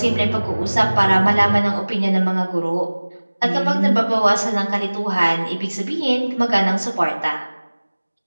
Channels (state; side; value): inverted; both; correlation -1.00